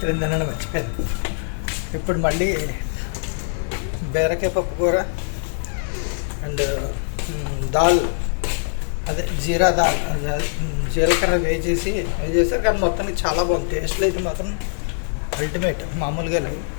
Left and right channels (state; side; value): silent; right; 60 dB below the other